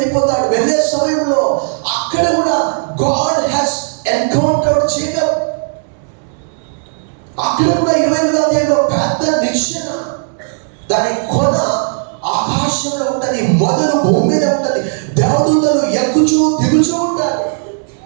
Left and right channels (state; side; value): silent; left; digital silence